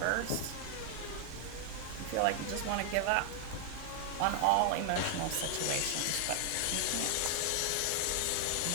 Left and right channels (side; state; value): both; different; correlation 0.00